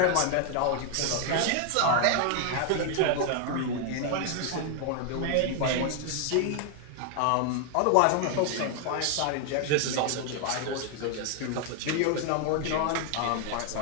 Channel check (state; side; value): different; both; correlation 0.00